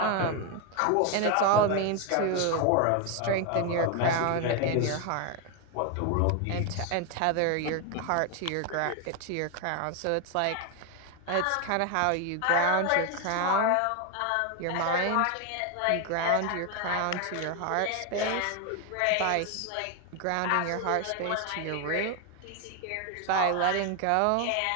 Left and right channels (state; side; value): different; both; correlation 0.01